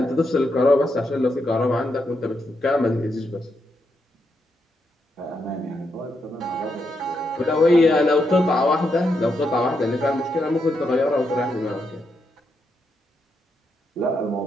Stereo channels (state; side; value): normal; both; correlation 0.82